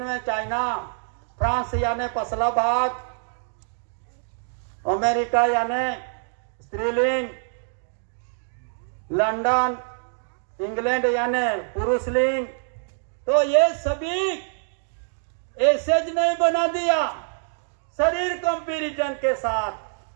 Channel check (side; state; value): left; silent; digital silence